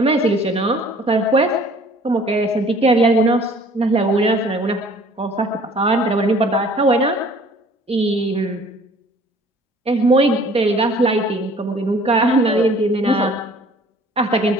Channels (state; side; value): normal; both; correlation 0.53